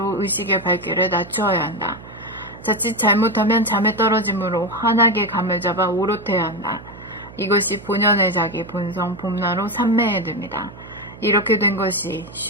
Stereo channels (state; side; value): noise; right; hum, 18 dB below the sound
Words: 의식의 밝기를 낮추어야 한다. 자칫 잘못하면 잠에 떨어지므로 환하게 감을 잡아 오롯해야 한다. 이것이 본연의 자기 본성 봄나로 삼매에 듭니다. 이렇게 된 것이